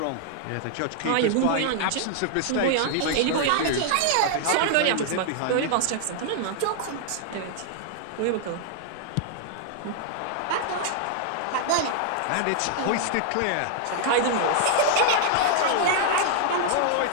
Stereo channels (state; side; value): different; both; correlation -0.01